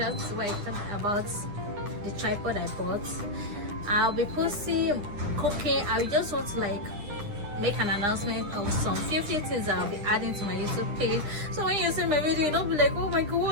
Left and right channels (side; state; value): left; late; 9.9 ms